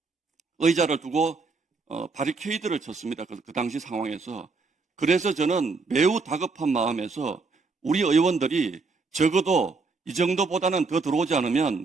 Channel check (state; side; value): quieter; left; 4.2 dB